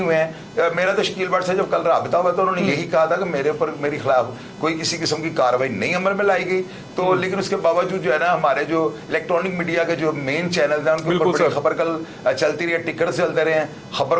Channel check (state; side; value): identical; both; correlation 1.00